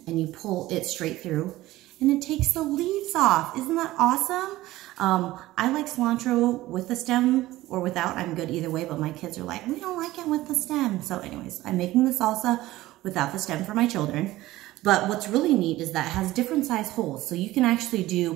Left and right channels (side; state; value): left; quieter; 16.9 dB